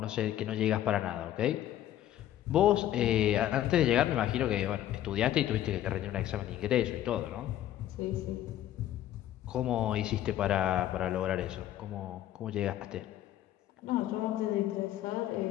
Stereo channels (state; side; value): quieter; right; 12.5 dB